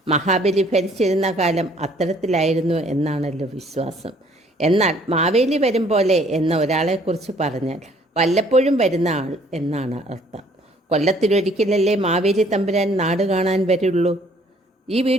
മഹാബലി ഭരിച്ചിരുന്ന കാലം അത്തരത്തിലായിരുന്നു എന്നാണല്ലോ വിശ്വാസം. എന്നാൽ മാവേലി വരും പോലെ എന്ന ഒരാളെക്കുറിച്ച് പറഞ്ഞാൽ വല്ലപ്പോഴും വരുന്ന ആൾ എന്നാണ് അർത്ഥം. കൊല്ലത്തിലൊരിക്കലല്ലേ മാവേലി തമ്പുരാൻ നാട് കാണാൻ വരുള്ളൂ. ഈ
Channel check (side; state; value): both; normal; correlation 0.60